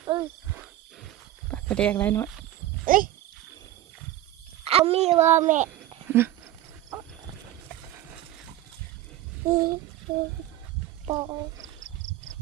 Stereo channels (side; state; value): left; quieter; 13.9 dB